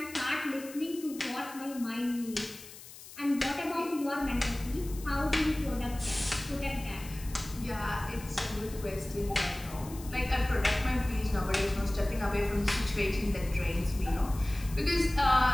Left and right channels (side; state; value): left; noise; hiss, 16 dB below the sound